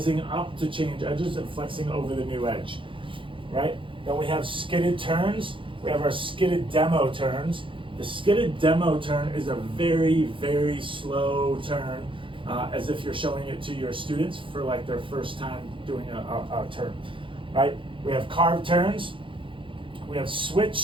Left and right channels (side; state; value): left; late; 0.25 ms